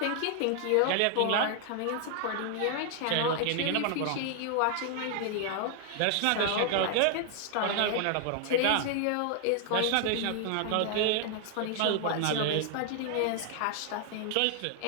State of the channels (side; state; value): both; different; correlation 0.00